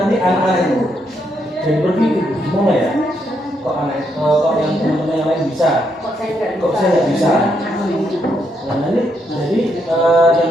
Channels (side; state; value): both; normal; correlation 0.77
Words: anak-anak itu jadi berpikir gimana ya kok yang teman-teman yang lain bisa, kok saya nggak bisa. Nah nanti jadi